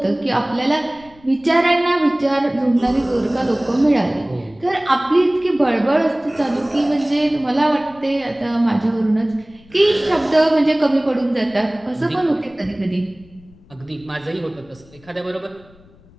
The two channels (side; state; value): left; noise; rumble, 26 dB below the sound